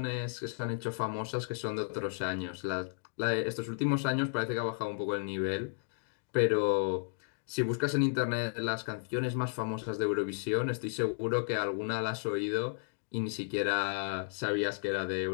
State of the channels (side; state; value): right; silent; digital silence